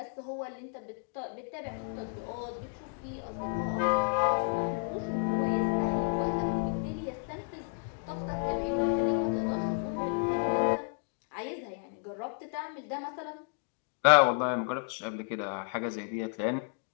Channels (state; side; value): silent; right; 56 dB below the other